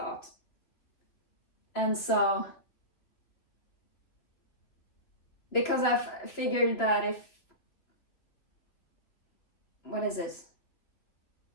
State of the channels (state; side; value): late; right; 3.1 ms